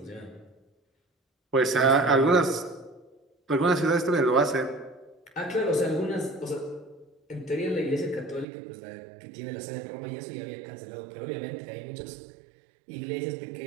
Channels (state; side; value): drops out; left; at 8.5 s